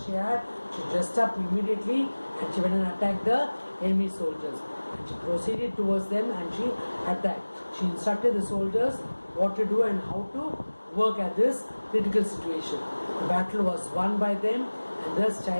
she had, she dressed up immediately and she went and attacked the enemy soldiers. And she proceeded towards them and she attacked. She instructed the soldiers what to do and how to work at this critical situation. The battle was won by them, and thus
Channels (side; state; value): both; inverted; correlation -1.00